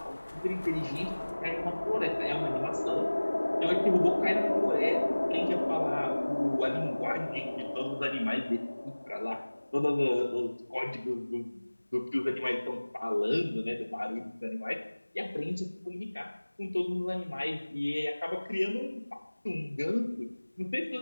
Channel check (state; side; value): inverted; both; correlation -1.00